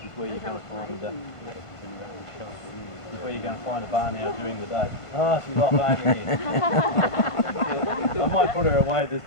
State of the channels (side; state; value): right; late; 1.5 ms